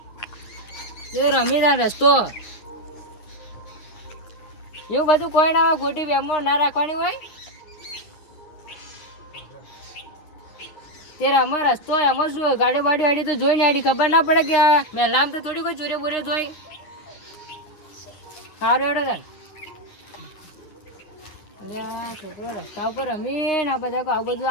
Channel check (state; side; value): late; right; 9.7 ms